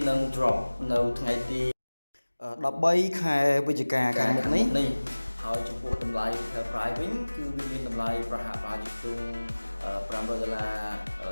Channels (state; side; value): inverted; both; correlation -1.00